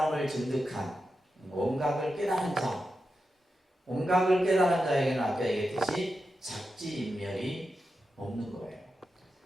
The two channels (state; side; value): normal; both; correlation 0.89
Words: 증득한, 원각을 깨달은 자, 원각을 깨달은 자에게는 아까 얘기했듯이 작지인멸이 없는 거예요.